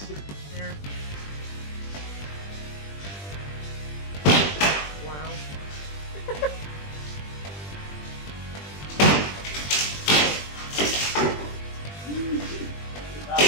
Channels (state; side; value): late; right; 20 ms